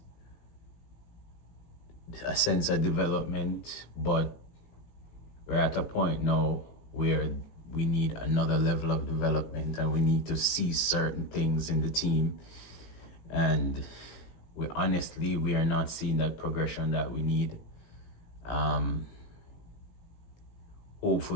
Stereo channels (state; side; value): late; right; 18 ms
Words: a sense of development, but we're at a point now where we need another level of development, and we need to see certain things in the team. And we are not seeing that progression that we need. Um,